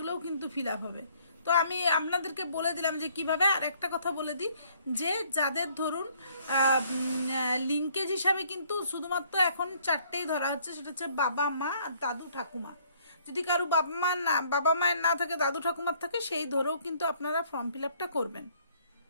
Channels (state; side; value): inverted; both; correlation -0.62